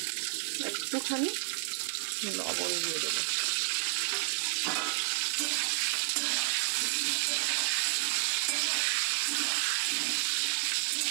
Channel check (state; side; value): silent; left; digital silence